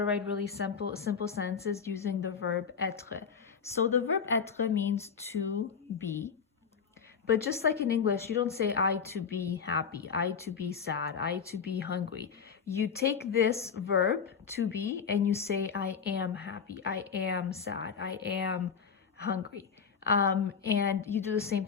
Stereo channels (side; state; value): right; quieter; 6.5 dB